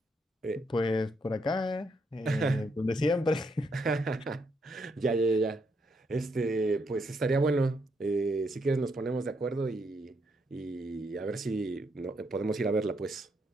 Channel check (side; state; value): both; normal; correlation 0.76